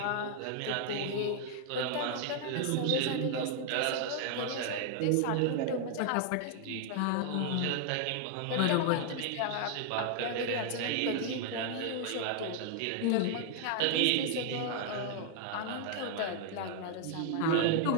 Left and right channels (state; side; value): different; both; correlation 0.00